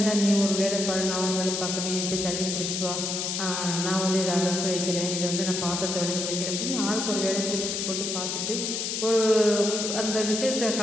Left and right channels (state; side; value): noise; left; hiss, 2 dB below the sound